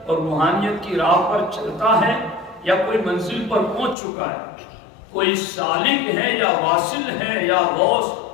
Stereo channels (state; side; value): drops out; right; at 4.0 s